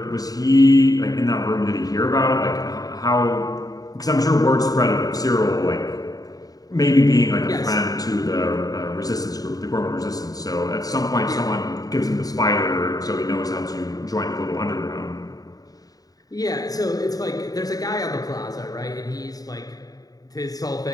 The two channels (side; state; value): right; late; 0.18 ms